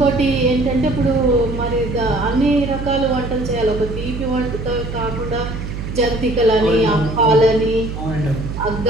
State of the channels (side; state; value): right; noise; hum, 7 dB below the sound